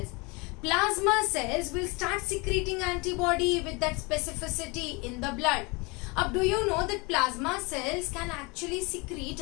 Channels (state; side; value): quieter; right; 27.8 dB